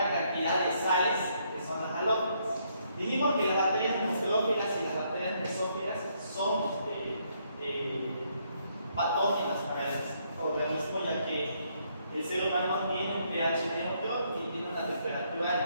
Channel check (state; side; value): inverted; both; correlation -0.72